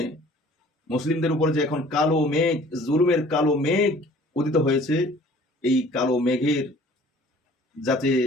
মুসলিমদের উপরে যে এখন কালো মেঘ, জুলুমের কালো মেঘ উদিত হয়েছে, এই কালো মেঘের যাতে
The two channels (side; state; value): both; normal; correlation 0.51